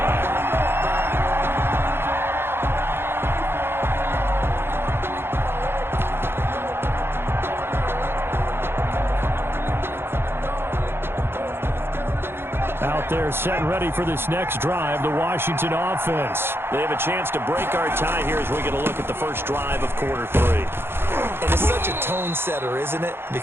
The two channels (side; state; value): left; late; 0.11 ms